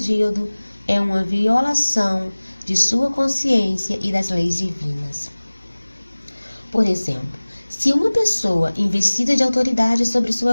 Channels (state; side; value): inverted; both; correlation -1.00